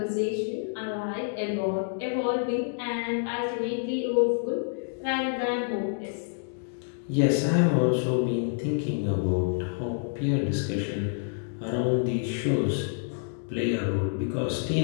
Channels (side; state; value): right; silent; digital silence